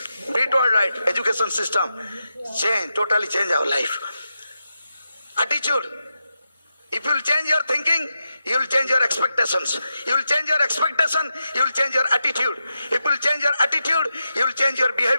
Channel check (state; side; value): inverted; both; correlation -0.88